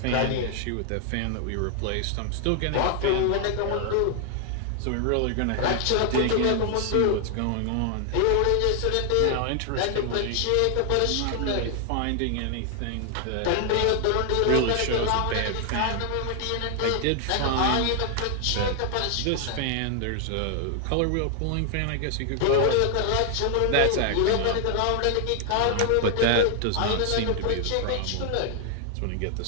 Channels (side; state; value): both; different; correlation 0.00